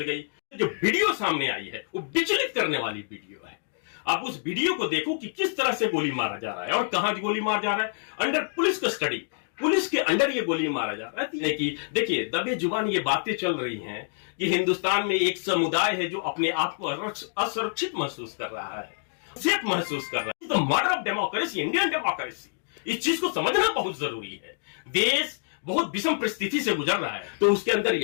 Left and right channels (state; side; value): silent; right; digital silence